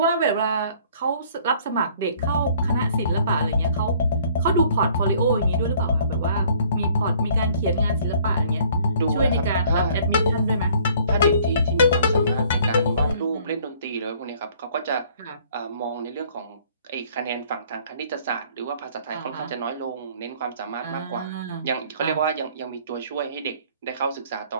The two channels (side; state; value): both; inverted; correlation -0.58